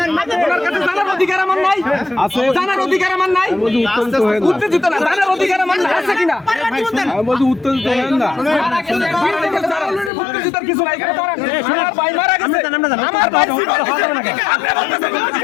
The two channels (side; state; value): right; drops out; at 10.1 s